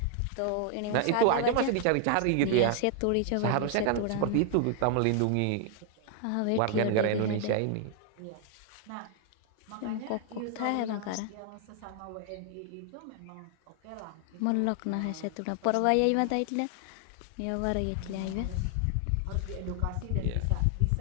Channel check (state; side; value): different; both; correlation 0.00